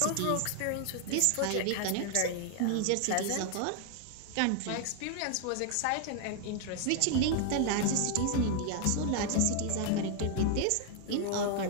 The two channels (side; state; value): both; different; correlation 0.00